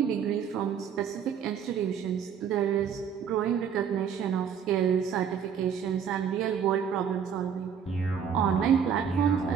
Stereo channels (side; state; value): left; quieter; 7.6 dB